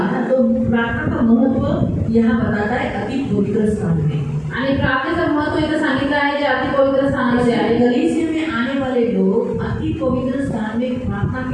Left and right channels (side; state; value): both; identical; correlation 1.00